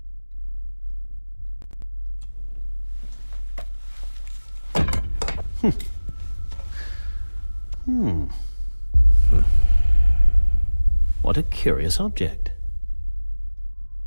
What a curious object.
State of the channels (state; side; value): inverted; both; correlation -1.00